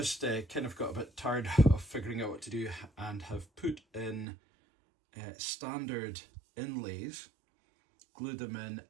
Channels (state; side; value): drops out; left; at 4.2 s